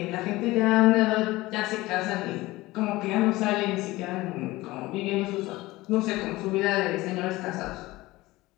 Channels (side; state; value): right; quieter; 19.3 dB